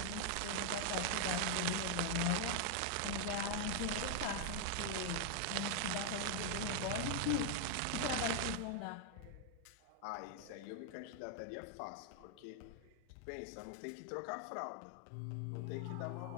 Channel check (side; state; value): both; different; correlation 0.00